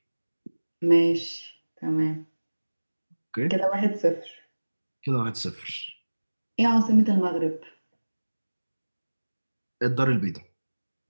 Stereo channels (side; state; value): both; inverted; correlation -1.00